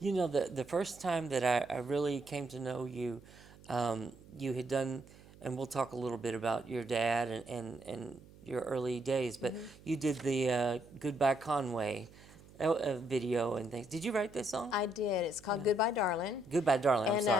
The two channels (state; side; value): noise; right; hum, 22 dB below the sound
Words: The first time that I really came to know you, you had done, and we'll talk a little bit about your dad and your early days, but you did the Goodbye Conway video and things. Did you write this song? I did. It's called Goodbye, Darling. Goodbye, Darling. I'm And